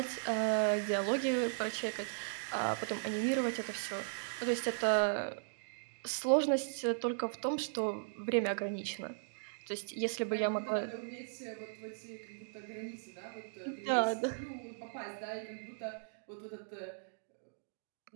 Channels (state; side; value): silent; left; digital silence